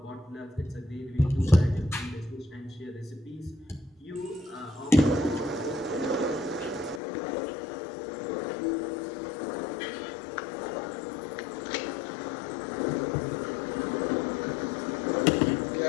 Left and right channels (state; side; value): drops out; right; at 7.0 s